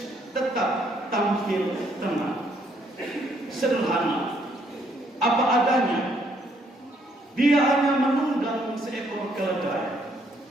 tetap tampil tenang, sederhana, apa adanya. Dia hanya menunggang seekor keledai.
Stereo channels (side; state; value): both; normal; correlation 0.69